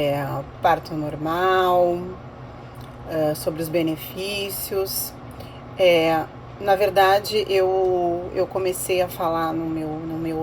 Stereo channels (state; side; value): identical; both; correlation 1.00